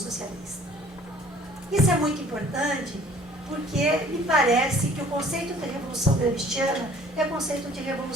Isso é muito importante porque me parece que o conceito de revolução gramsciana é um conceito de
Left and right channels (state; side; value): normal; both; correlation 0.53